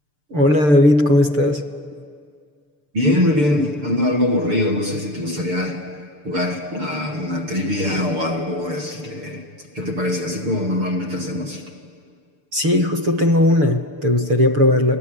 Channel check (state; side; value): late; left; 6.8 ms